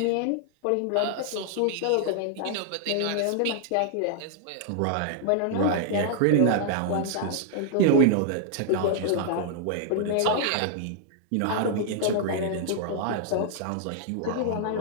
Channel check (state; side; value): different; both; correlation -0.01